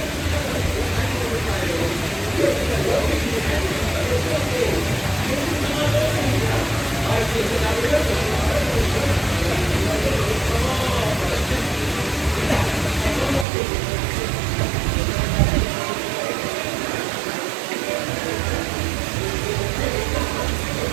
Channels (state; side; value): drops out; left; at 13.5 s